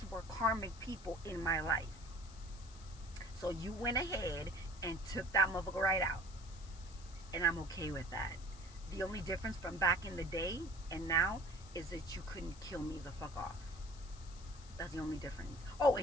were karmic people in my life. So you went ahead and took that motherfucker right out. And I'm okay with that. The only difference from back in the day and now is that you couldn't kill me the fuck off. That's the only difference. Oh,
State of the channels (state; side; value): noise; left; hiss, 20 dB below the sound